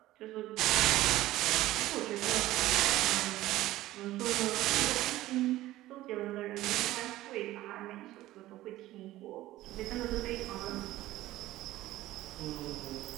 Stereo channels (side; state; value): left; quieter; 16.0 dB